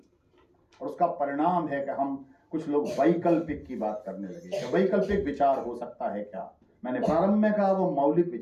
और उसका परिणाम है कि हम कुछ लोग वैकल्पिक की बात करने लगे। वैकल्पिक विचार हो सकता है क्या? मैंने प्रारंभ में कहा वो मौलिक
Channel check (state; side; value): identical; both; correlation 1.00